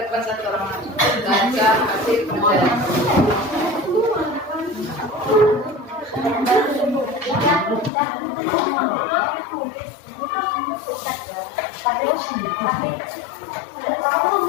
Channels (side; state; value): right; drops out; at 7.9 s